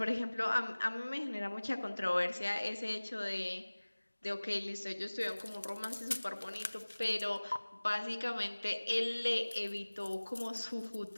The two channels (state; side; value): inverted; both; correlation -1.00